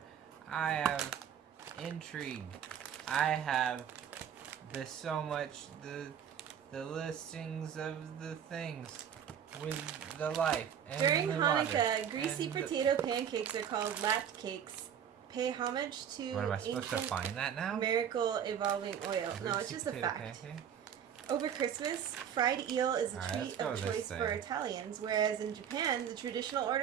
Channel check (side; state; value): left; quieter; 8.7 dB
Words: I have intrigue. I have the listings of the things with the life. And During the Hanukkah, water, greasy and potato pancakes are called latte cakes. Pay homage to What am I supposed to ancient find that now? miracle evolving oil. No, it's Greasy just a potato fact. pancake? Over Christmas, fried eel is a Alright, treat let's go of with this choice for thing. Italians, whereas in Japan, the traditional